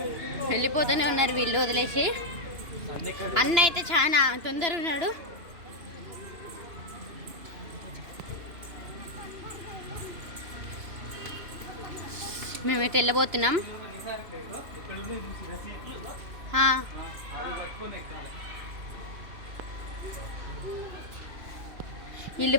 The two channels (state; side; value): late; left; 2.9 ms